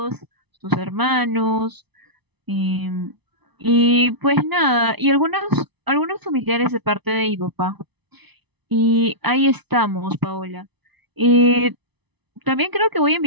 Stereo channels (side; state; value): left; late; 0.99 ms